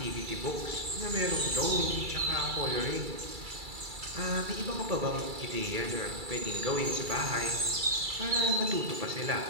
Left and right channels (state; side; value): late; left; 2.3 ms